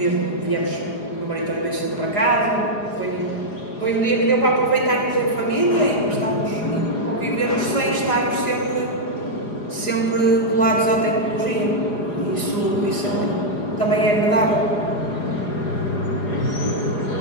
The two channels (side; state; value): right; late; 4.9 ms